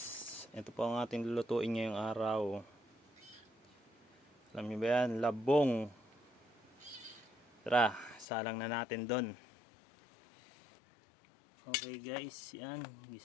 ito po ang ating lulutuin ngayong araw. Alam niyo ba yan? Labong. Tara, salang na natin doon. Okay guys, yan.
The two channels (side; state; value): right; drops out; at 8.2 s